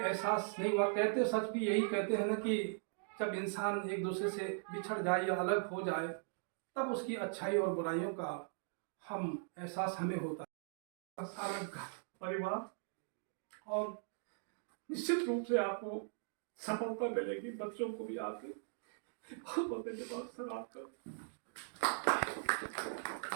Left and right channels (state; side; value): silent; left; digital silence